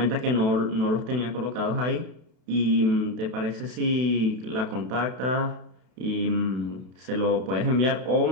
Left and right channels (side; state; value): left; late; 32 ms